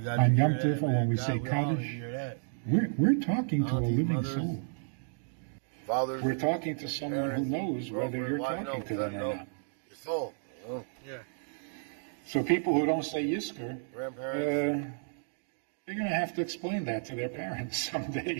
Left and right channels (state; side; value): silent; left; digital silence